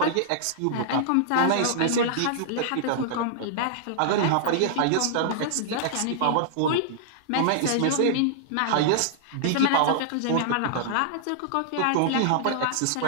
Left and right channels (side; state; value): both; different; correlation -0.01